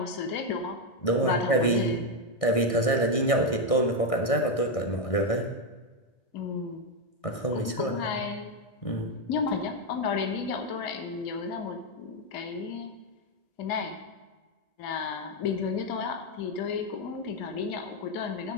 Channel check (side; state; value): right; late; 1.6 ms